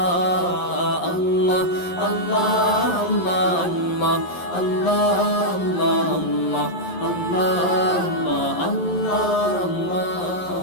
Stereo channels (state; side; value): late; right; 11 ms